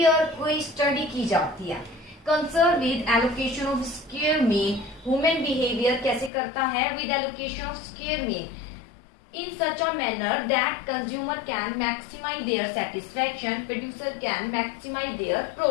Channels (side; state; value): right; drops out; at 6.3 s